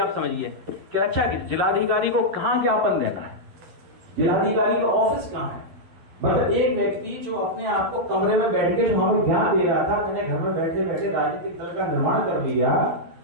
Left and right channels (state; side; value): late; left; 12 ms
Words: समझिए कि अच्छा कि जिलाधिकारी को कहां ज्ञापन देना है, जिलाधिकारी का ऑफिस कहां है। मतलब एक व्यक्ति जो अपने आप को कमरे में बैठ के जो हमें ज्ञान दे रहा था, मैंने घर में बैठे बैठे राजनीतिक दल का निर्माण कर लिया,